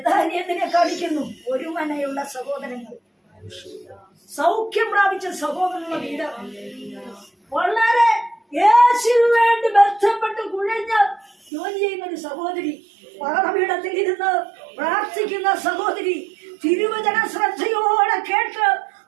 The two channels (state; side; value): drops out; left; at 11.5 s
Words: കാണിക്കുന്നു. ഒരു മനയുള്ള സഹോദരങ്ങൾ, സൗഖ്യം പ്രാപിച്ച സഹോദരനുള്ള വീട്, വളരെ യേശുവിന് വേണ്ടി ബന്ധപ്പെട്ട് കുഴഞ്ഞ് ജോലി ചെയ്യുന്ന ഒരു സഹോദരി, പാഠപീഠത്തിൽ ഇരുന്ന് പ്രാർത്ഥിക്കുന്ന സഹോദരി, തിരുവചന ശ്രദ്ധയോടെ കേട്ട്